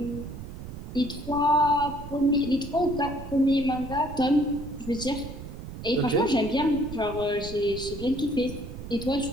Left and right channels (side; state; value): right; noise; rumble, 11 dB below the sound